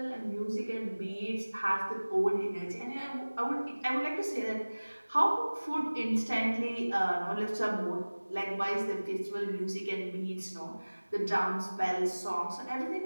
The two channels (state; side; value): inverted; both; correlation -1.00